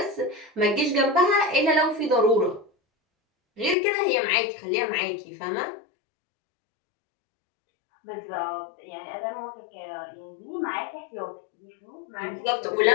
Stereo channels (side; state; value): right; drops out; at 3.8 s